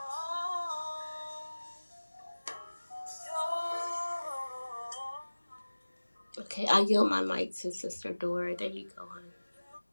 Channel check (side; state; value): both; inverted; correlation -1.00